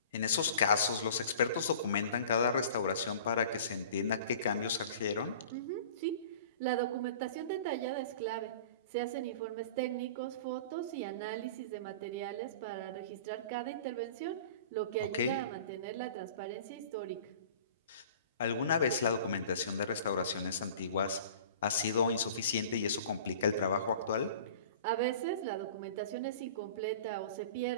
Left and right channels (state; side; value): inverted; both; correlation -0.42